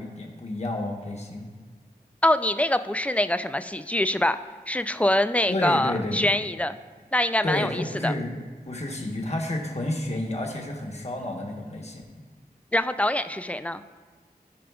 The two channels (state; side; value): normal; both; correlation 0.75